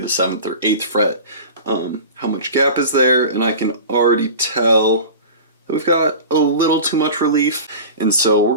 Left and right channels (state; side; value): inverted; both; correlation -0.34